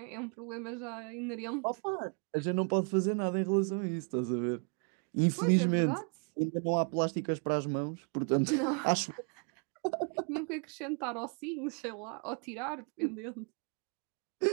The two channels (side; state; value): left; quieter; 39.5 dB